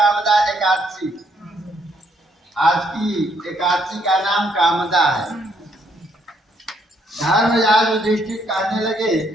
एकादशी। आज की एकादशी का नाम कामदा है। धर्मराज युधिष्ठिर कहने लगे,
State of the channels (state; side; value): normal; both; correlation 0.70